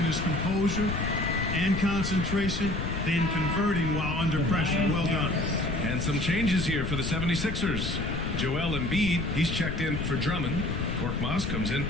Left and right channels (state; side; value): noise; left; rumble, 3 dB below the sound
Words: his composure and concentration, then converting while under pressure. Well done. And some changes here for the 76ers. Joel Embiid, he's checked in for Drummond. Korkmaz comes in